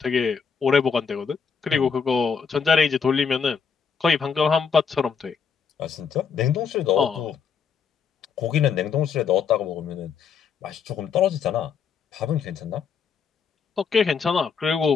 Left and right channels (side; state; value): right; quieter; 6.2 dB